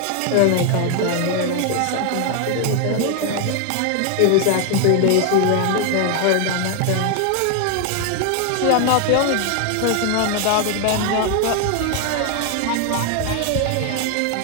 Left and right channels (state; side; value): different; both; correlation 0.01